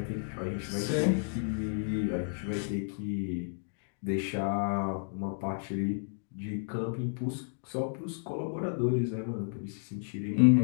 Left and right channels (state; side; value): silent; right; digital silence